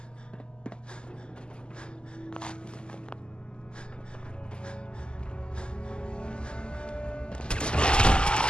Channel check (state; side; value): late; right; 0.048 ms